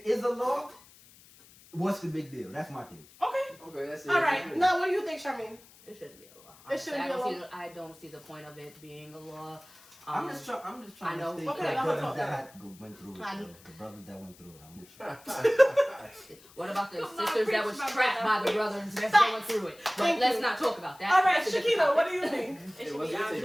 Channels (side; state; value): left; noise; hiss, 24 dB below the sound